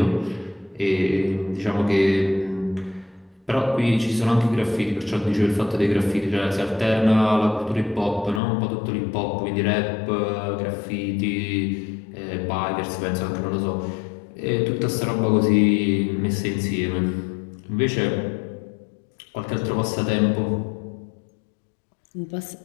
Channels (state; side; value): drops out; right; at 8.4 s